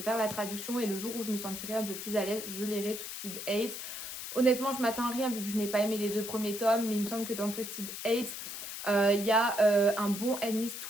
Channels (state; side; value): noise; left; hiss, 7 dB below the sound